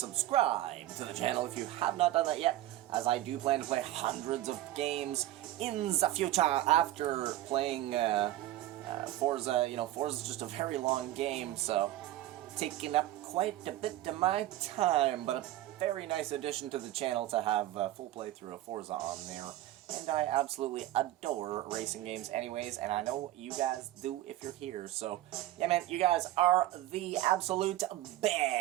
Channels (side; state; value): left; quieter; 14.8 dB